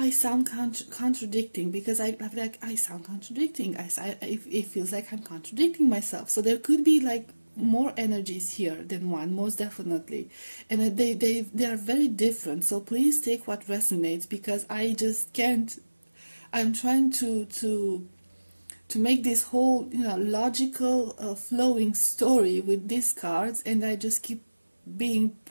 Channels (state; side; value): inverted; both; correlation -1.00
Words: sound contradicting, because I sound contradicting. It feels like I'm contradicting myself. So there could be like more energies here than one, most definitely, and they are very different. So please take what resonates, because I just can't. I'm trying to make this whole, you know, logical flowing story with these cards, and I just keep being